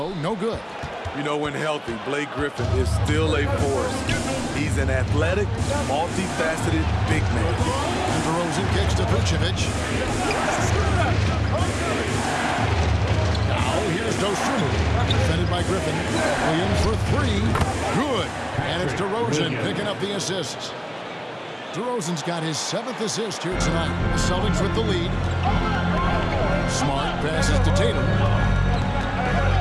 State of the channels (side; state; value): both; identical; correlation 1.00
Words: no good. You know, when healthy, Blake Griffin is still a force. He's an athletic, multifaceted big man. And DeRozan kicks to Vucevic. Now here's Dosunmu, defended by Griffin. Williams for 3, good. And it's DeRozan picking up the assists. DeRozan's got his 7th assist here tonight. The Celtics with the lead. Smart passes to Tatum.